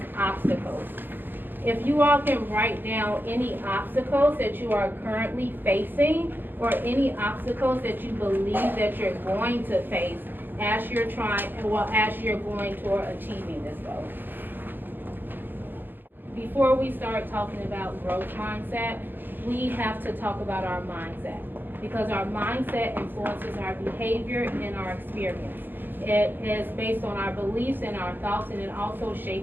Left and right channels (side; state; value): left; late; 0.095 ms